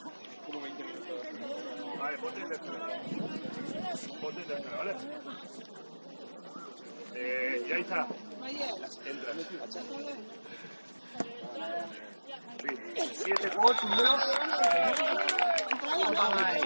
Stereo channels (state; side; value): inverted; both; correlation -1.00